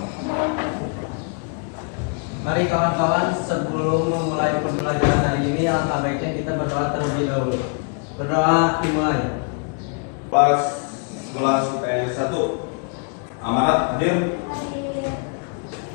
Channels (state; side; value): quieter; right; 37.4 dB